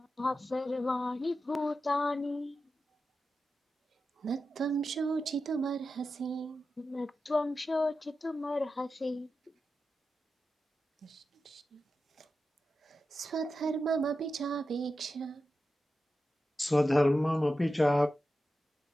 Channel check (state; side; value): normal; both; correlation 0.91